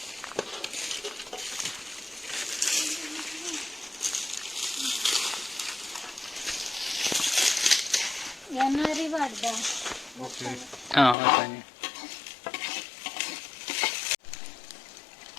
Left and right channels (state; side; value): drops out; right; at 11.2 s